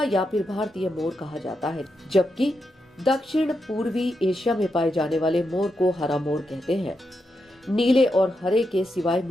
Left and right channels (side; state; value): both; normal; correlation 0.85